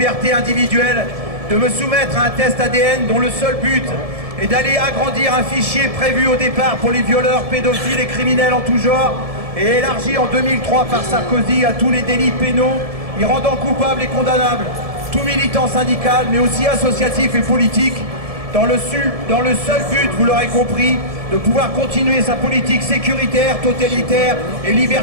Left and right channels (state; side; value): late; left; 1.7 ms